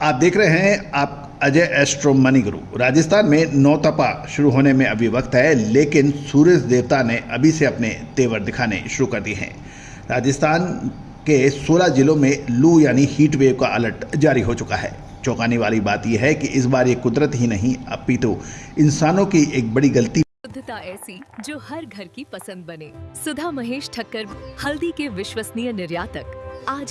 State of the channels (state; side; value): identical; both; correlation 1.00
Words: आप देख रहे हैं आप अजय एस्ट्रो मनी गुरु। राजस्थान में नौतपा शुरू होने में अभी वक्त है, लेकिन सूर्य देवता ने अभी से अपने तेवर दिखाने शुरू कर दिए हैं। राजस्थान के 16 जिलों में लू यानी हीट वेव का अलर्ट जारी हो चुका है। चौंकाने वाली बात यह है कि इस बार ये कुदरत ही नहीं अपितु इंसानों की एक बड़ी गलती शुद्धता ऐसी जो हर घर की पसंद बने। सुधा महेश ठक्कर, हल्दी के विश्वसनीय निर्यातक।